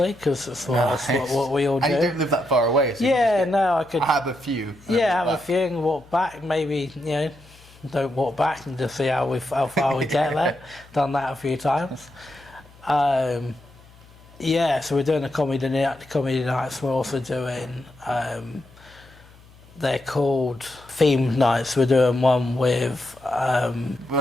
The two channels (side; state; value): left; noise; hum, 25 dB below the sound